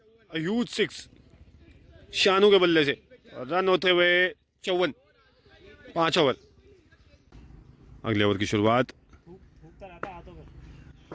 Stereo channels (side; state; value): both; identical; correlation 1.00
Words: ह्यूज 6 शानू के बल्ले से। रन होते हुए 54। 5 ओवर। अगले ओवर की शुरुआत।